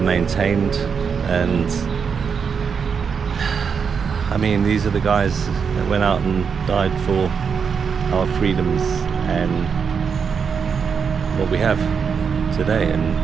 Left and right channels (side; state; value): left; quieter; 6.3 dB